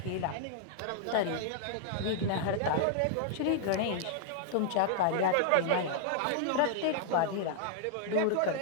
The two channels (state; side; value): different; both; correlation -0.01